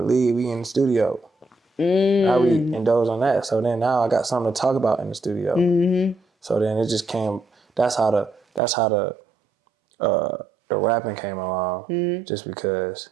league, we in the studio. Now we indulge on that. So then now I got something to talk about in the studio. So then it just came. That's how the rapping came along. Just because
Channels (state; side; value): drops out; left; at 8.6 s